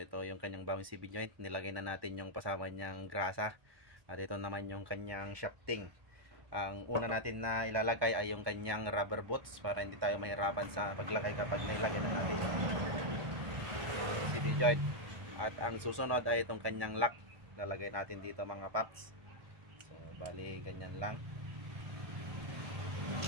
yung kanyang bagong CB joint. Nilagay na natin yung pasama niyang grasa. At ito naman yung kanyang shafting. Ang una natin na ilalagay ay yung kanyang rubber boots para hindi tayo mahirapan sa paglagay kapag nilagay na natin yung CB joint. At ang susunod ay itong kanyang lock. Lalagay natin dito mga paps. So bali ganyan lang.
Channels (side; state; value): left; late; 1.1 ms